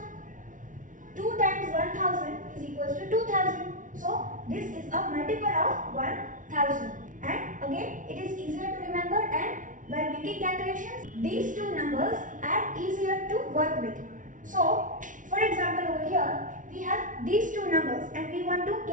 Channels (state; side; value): late; left; 0.38 ms